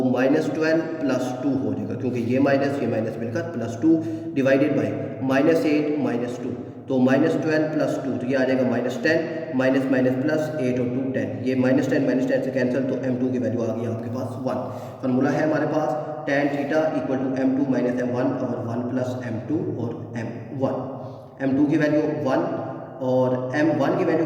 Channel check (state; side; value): identical; both; correlation 1.00